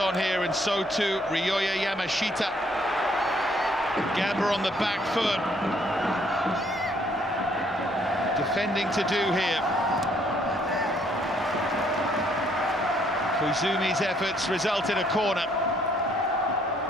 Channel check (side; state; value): both; normal; correlation 0.67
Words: here, and so too Ryoya Yamashita. Gamba on the back foot. Defending to do here. Koizumi's efforts result in a corner.